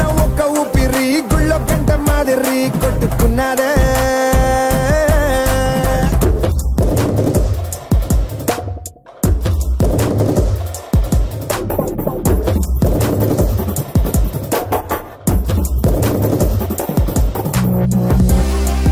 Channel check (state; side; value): identical; both; correlation 1.00